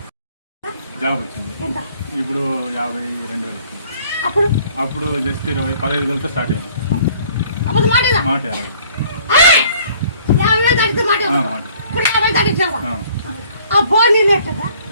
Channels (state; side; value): inverted; both; correlation -0.58